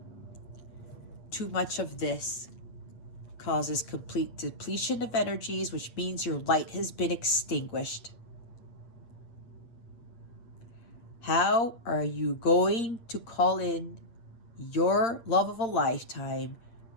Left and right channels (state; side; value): late; right; 8.6 ms